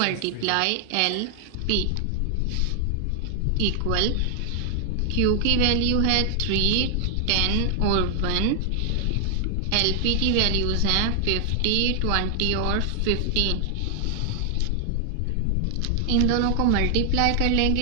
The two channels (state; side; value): different; both; correlation 0.00